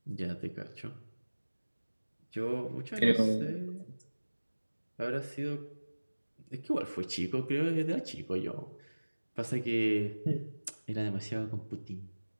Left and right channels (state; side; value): inverted; both; correlation -1.00